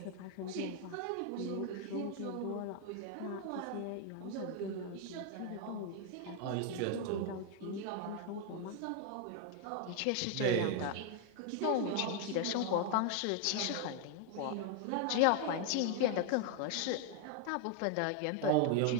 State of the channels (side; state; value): both; different; correlation 0.00